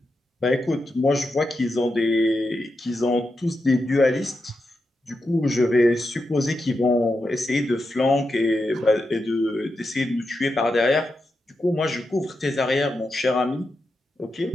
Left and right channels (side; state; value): both; normal; correlation 0.87